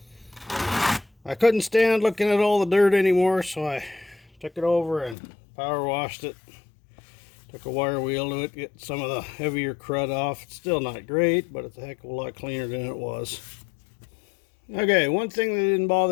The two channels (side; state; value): right; drops out; at 5.2 s